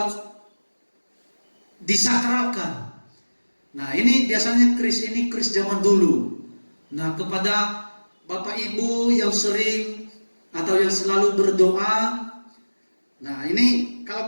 disakralkan. Nah, ini biasanya keris zaman dulu. Nah, kepada Bapak Ibu yang sering atau yang selalu berdoa, nah ini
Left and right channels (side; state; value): both; inverted; correlation -1.00